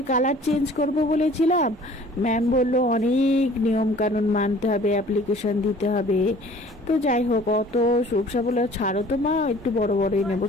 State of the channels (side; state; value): both; normal; correlation 0.50